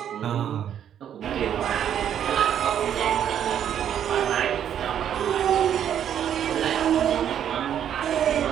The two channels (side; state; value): left; quieter; 9.6 dB